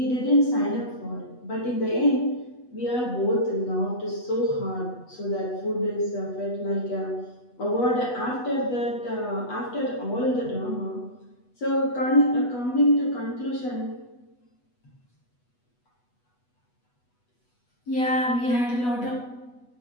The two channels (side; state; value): right; late; 8.1 ms